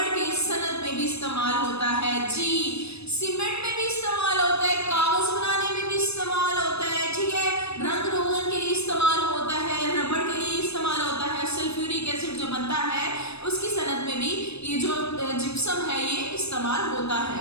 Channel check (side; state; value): right; late; 0.79 ms